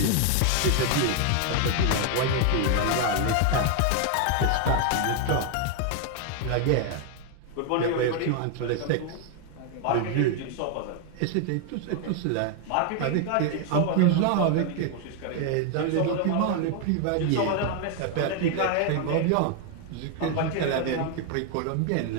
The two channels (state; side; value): different; both; correlation 0.00